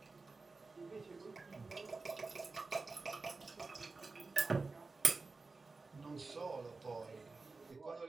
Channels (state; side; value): quieter; left; 3.9 dB